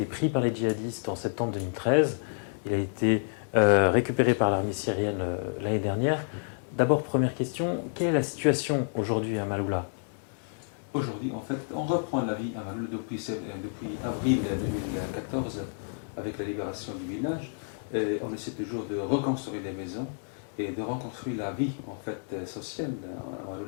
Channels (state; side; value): silent; right; digital silence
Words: pris par les djihadistes en septembre 2013. Il a été récupéré par l'armée syrienne l'année dernière. D'abord, première question, quelle est la situation aujourd'hui à Maloula ? Aujourd'hui, en fait, on reprend la vie à Maloula depuis avril 2014 avec la libération du village. On essaie toujours de reconstruire les maisons et de reconstruire la vie en fait sociale à